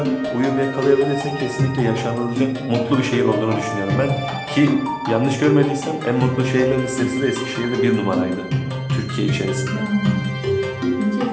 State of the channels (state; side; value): identical; both; correlation 1.00